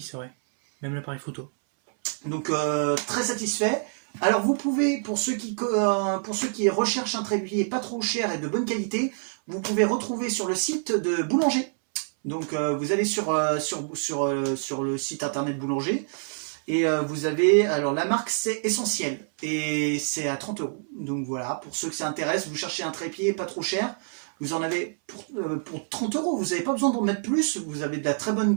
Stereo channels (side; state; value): left; silent; 61 dB below the other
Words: c'est vrai. Même l'appareil photo. Donc très satisfait. Alors vous pouvez, pour ceux qui recherchent un trépied pas trop cher et de bonne qualité, vous pouvez retrouver sur le site de Boulanger. Donc vous allez sur le site internet Boulanger et vous avez, alors la marque c'est Essentiel et c'est à 30 €. Donc voilà, pour ceux que ça intéresse, vous cherchez un trépied pas trop cher, vous en avez pour 30 €, vous n'avez pas besoin d'en mettre plus, vous avez de la très bonne